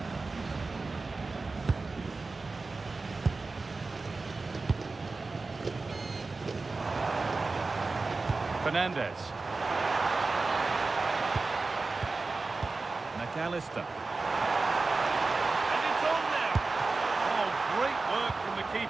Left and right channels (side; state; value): left; quieter; 3.8 dB